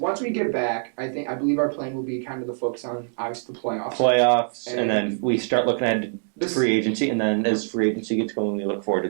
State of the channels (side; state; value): left; silent; digital silence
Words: we get back, I believe our plan will be kind of the focus on obviously the playoffs, and then we start looking at free agency, and then as free agency gets going, we look forward to